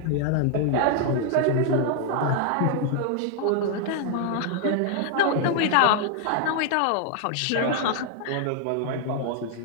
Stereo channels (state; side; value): different; both; correlation 0.00